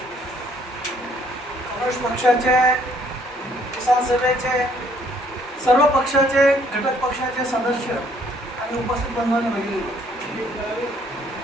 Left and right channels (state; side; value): normal; both; correlation 0.63